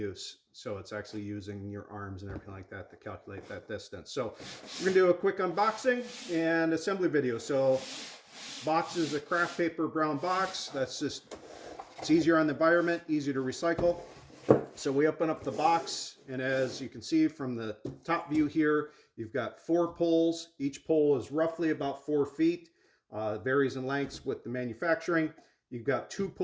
So it's actually using your arms and everything like that to calculate that distance. So we're going to do a quick unboxing and assembly video. So box is a craft paper brown box. It's easier on the environment, easier to recycle. So we open up the box, and as you can see from the top view here, you've got 4 poles. Each pole is roughly about 4 feet. Varies in lengths with the manufacturing. You've got 2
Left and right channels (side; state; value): both; identical; correlation 1.00